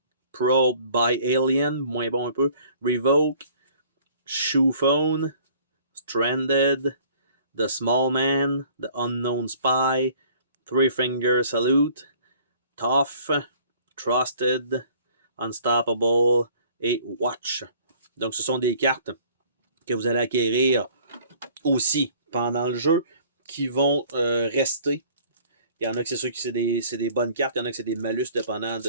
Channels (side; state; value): both; inverted; correlation -0.54